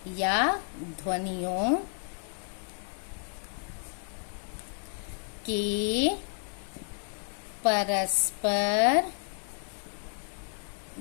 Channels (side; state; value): right; silent; 57 dB below the other